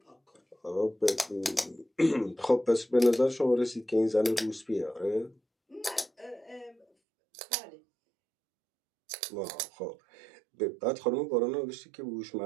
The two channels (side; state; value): left; drops out; at 6.9 s